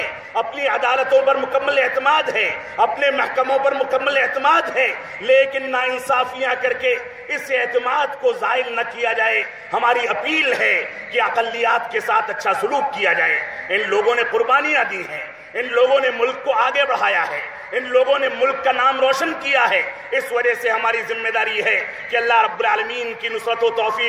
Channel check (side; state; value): both; identical; correlation 1.00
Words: اپنی عدالتوں پر مکمل اعتماد ہے، اپنے محکموں پر مکمل اعتماد ہے، لیکن ناانصافیاں کر کے اس اعتماد کو زائل نہ کیا جائے۔ ہماری اپیل ہے کہ اقلیات کے ساتھ اچھا سلوک کیا جائے۔ ان لوگوں نے قربانیاں دی ہیں، ان لوگوں نے ملک کو آگے بڑھایا ہے، ان لوگوں نے ملک کا نام روشن کیا ہے۔ اس وجہ سے ہماری ذمہ داری ہے کہ اللہ رب العالمین کی نصرت و